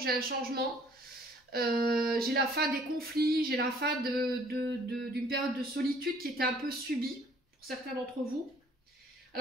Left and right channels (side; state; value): both; normal; correlation 0.58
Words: un changement. J'ai la fin des conflits, j'ai la fin d'une période de solitude qui était un peu subie pour certains d'entre vous.